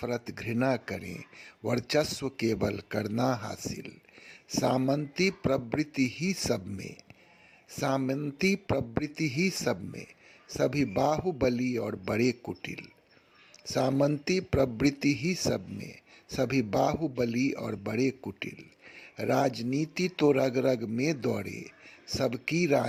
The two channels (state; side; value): identical; both; correlation 1.00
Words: घृणा करें, वर्चस्व केवल करना हासिल। सामंती प्रवृत्ति ही सब में, सामंती प्रवृत्ति ही सब में, सभी बाहुबली और बड़े कुटिल। सामंती प्रवृत्ति ही सब में, सभी बाहुबली और बड़े कुटिल। राजनीति तो रग रग में दौड़े, सबकी